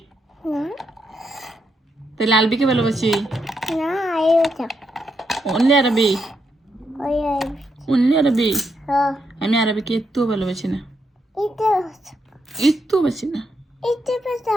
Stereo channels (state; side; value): normal; both; correlation 0.81